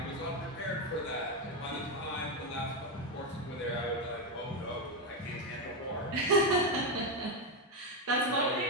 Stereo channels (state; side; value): normal; both; correlation 0.08